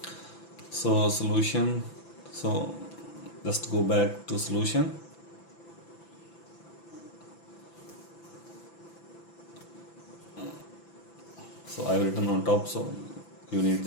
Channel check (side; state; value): right; late; 6.0 ms